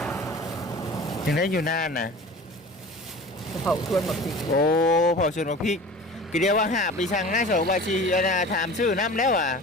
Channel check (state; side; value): normal; both; correlation 0.39